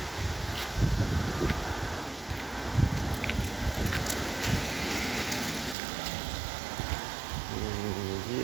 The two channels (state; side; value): drops out; left; at 5.8 s